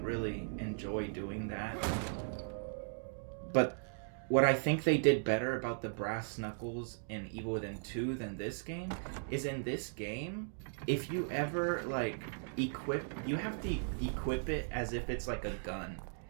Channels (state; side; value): silent; left; digital silence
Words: really enjoy doing that. But what I think they did better about the brass knuckles in Evil Within 2 than this game is, in this game, if you ever like you have to equip it as if it's like a gun.